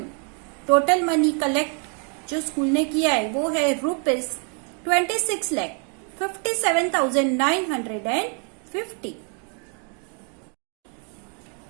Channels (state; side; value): quieter; left; 39.5 dB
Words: Total money collect जो स्कूल ने किया है वो है rupees 26,57,950।